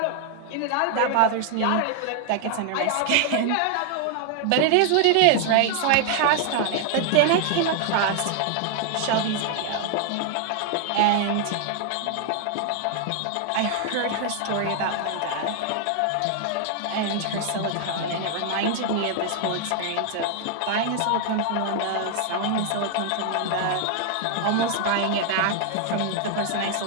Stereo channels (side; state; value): both; different; correlation 0.00